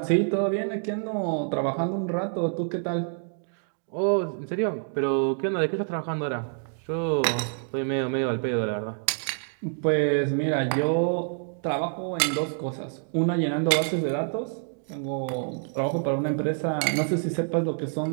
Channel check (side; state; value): left; silent; 60 dB below the other